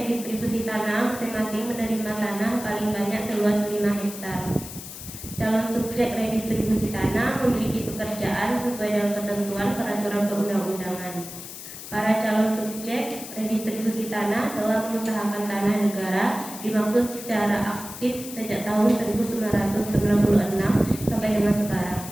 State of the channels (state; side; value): noise; left; hiss, 12 dB below the sound